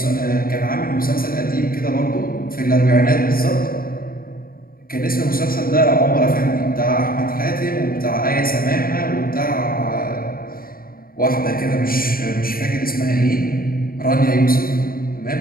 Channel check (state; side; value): late; right; 0.42 ms